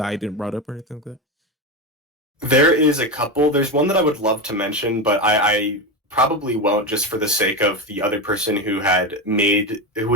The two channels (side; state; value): both; normal; correlation 0.16